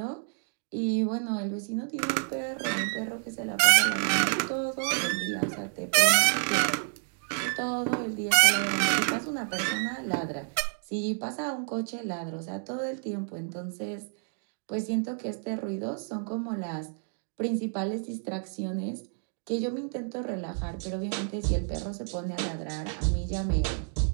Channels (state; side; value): silent; left; 58 dB below the other